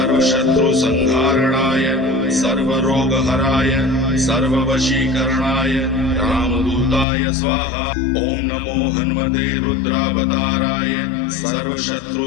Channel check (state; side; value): drops out; right; at 7.1 s